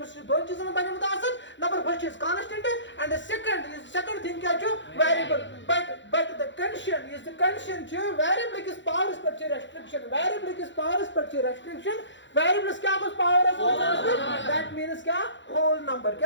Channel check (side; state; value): right; late; 0.54 ms